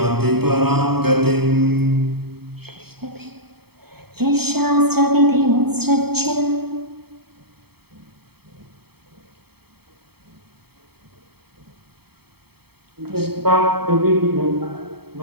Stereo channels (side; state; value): left; late; 0.96 ms